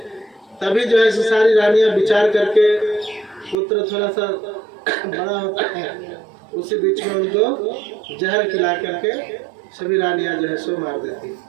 तभी जो है सारी रानियां विचार करके, पुत्र थोड़ा सा बड़ा होता है, उसी बीच में उनको जहर खिला करके सभी रानियां जो है सो मार देती।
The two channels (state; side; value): drops out; left; at 3.6 s